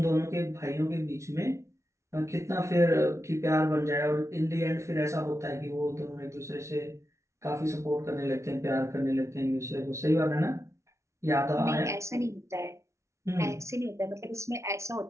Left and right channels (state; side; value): late; left; 0.14 ms